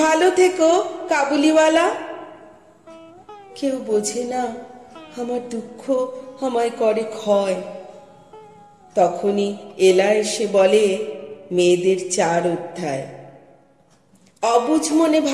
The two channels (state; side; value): identical; both; correlation 1.00